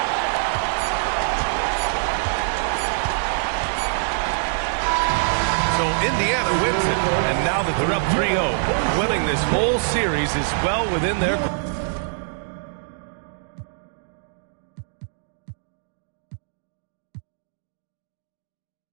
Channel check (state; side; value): silent; left; digital silence